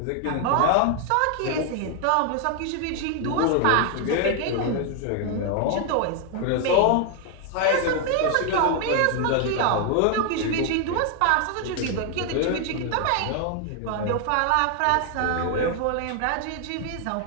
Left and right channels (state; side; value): different; both; correlation 0.00